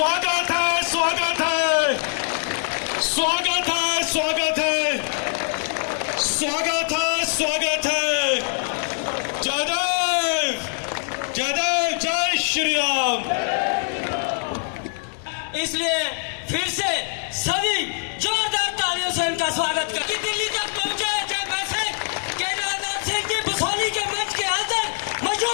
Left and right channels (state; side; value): silent; right; 58 dB below the other